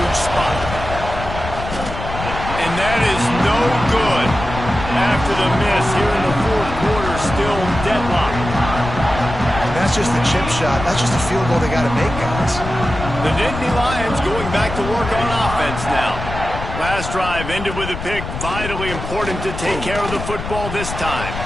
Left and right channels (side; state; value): left; noise; rumble, 8 dB below the sound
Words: spot. And that is no good. After the miss here in the fourth quarter, still deadlocked. That's just the chip shot. That's just a field goal they got to make, guys. The Nittany Lions going back to work on offense now. Last drive ended with a pick. Vitally important to take care of the football this time.